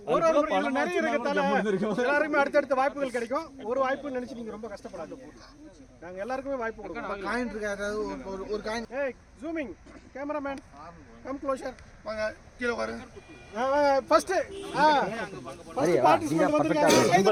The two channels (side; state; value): both; identical; correlation 1.00